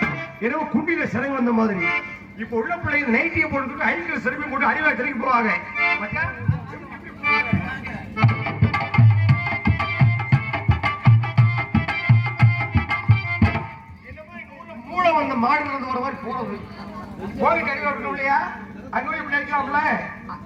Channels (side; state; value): both; identical; correlation 1.00